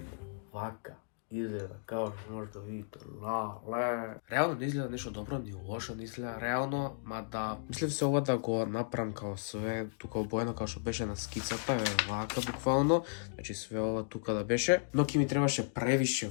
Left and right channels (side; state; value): right; silent; digital silence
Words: вака изгледа, како што може да видите, реално не изгледа нешто добро, ни лошо не изгледа реално, мада мислев се ова да го направам као све тука обоено као што беше на скицата, вака буквално, значи све ова тука да беше, но ќе ми требаше превише